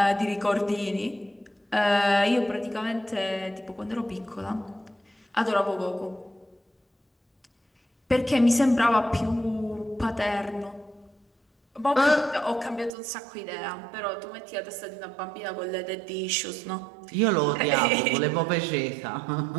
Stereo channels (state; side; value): drops out; left; at 12.9 s